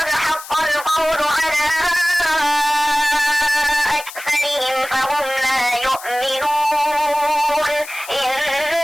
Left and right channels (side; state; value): left; noise; hiss, 14 dB below the sound